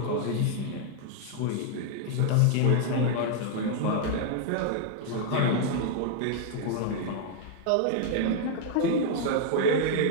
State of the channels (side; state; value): both; different; correlation -0.01